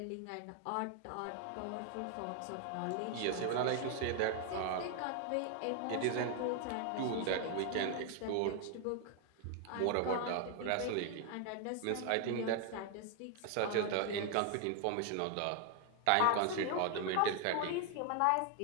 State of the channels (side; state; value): both; different; correlation 0.00